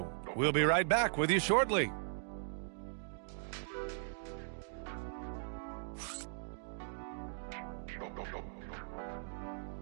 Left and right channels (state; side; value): silent; left; digital silence